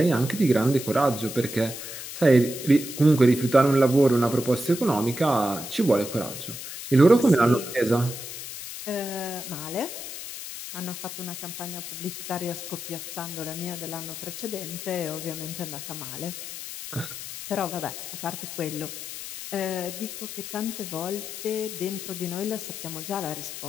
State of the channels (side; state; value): left; noise; hiss, 9 dB below the sound